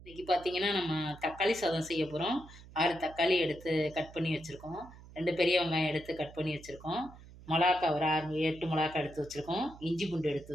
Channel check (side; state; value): right; noise; hum, 19 dB below the sound